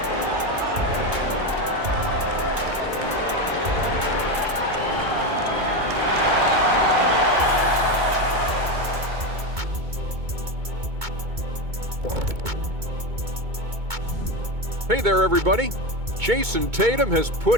Hey there, everybody. Jason Tatum has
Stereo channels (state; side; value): late; left; 2.2 ms